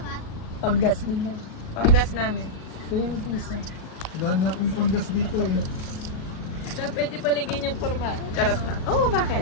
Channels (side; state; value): right; late; 37 ms